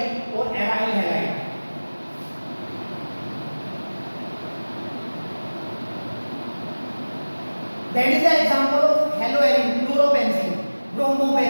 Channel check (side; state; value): both; inverted; correlation -1.00